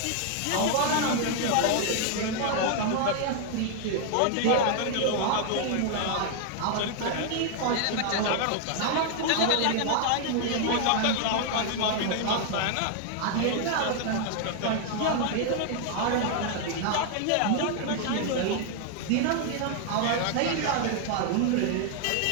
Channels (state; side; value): different; both; correlation 0.00